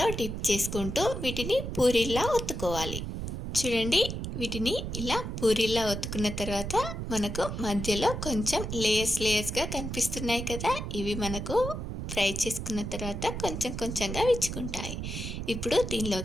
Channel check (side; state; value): right; noise; rumble, 5 dB below the sound